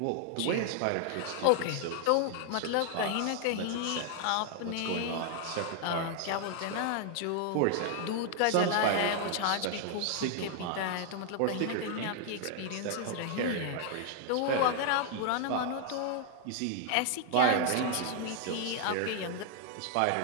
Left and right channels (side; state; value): both; different; correlation 0.00